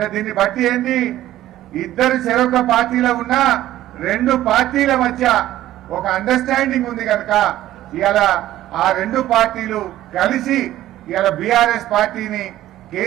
దీన్ని బట్టి ఏంటి, ఇద్దరు చెరొక్క పార్టీలో ఉన్న రెండు పార్టీల మధ్య ఒక అండర్స్టాండింగ్ ఉంది కనుక ఇవాళ ఆ రెండు పార్టీలు కలిసి ఇవాళ బీఆర్ఎస్ పార్టీని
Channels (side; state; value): left; quieter; 14.0 dB